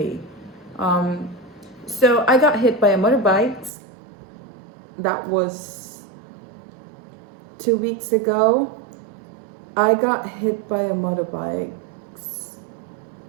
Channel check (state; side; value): drops out; left; at 3.7 s